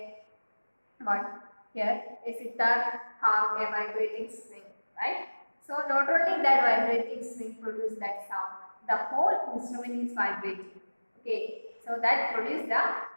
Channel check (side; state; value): both; inverted; correlation -1.00